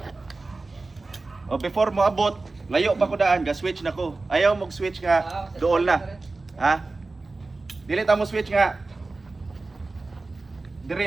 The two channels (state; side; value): quieter; left; 3.5 dB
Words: O before mo abot, layo pa ko daan, ga-switch na ko. Ayaw mong switch nga, doon na. Ha? Dili ta mo switch nga.